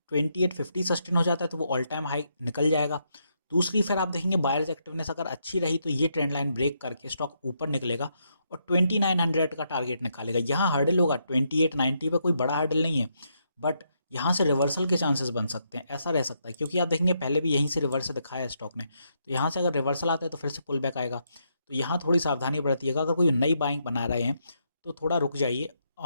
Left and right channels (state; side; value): inverted; both; correlation -0.78